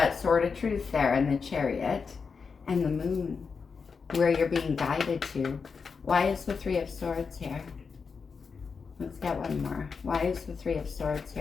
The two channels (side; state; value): right; quieter; 5.4 dB